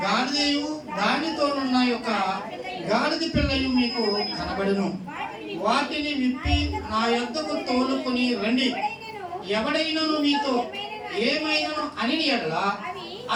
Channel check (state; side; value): identical; both; correlation 1.00